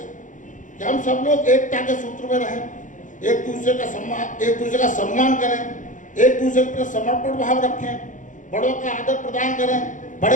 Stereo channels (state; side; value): late; right; 0.37 ms